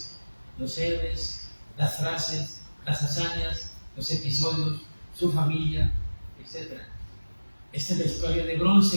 los héroes, las frases, las hazañas, los episodios, su familia, etc. Esta es la historia de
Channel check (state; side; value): inverted; both; correlation -1.00